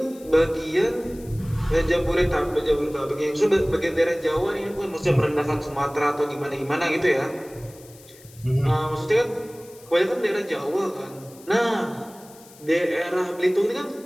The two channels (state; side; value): noise; left; hiss, 23 dB below the sound